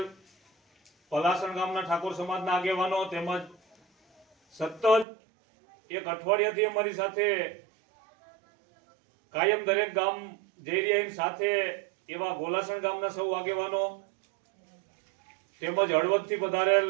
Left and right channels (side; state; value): left; drops out; at 5.1 s